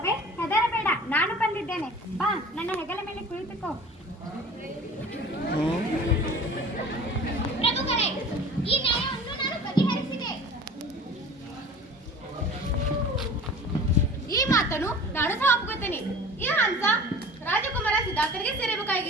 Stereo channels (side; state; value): both; normal; correlation 0.42